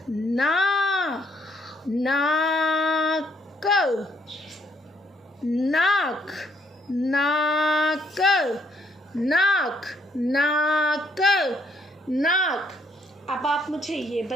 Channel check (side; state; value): both; normal; correlation 0.70